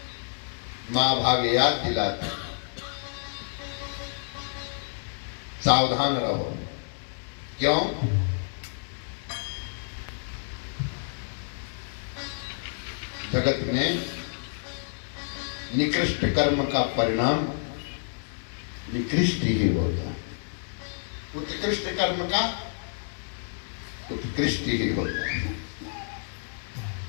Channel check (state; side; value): silent; right; digital silence